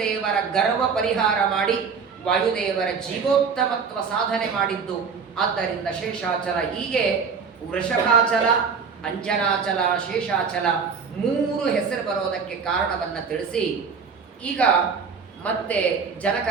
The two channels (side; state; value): left; quieter; 5.8 dB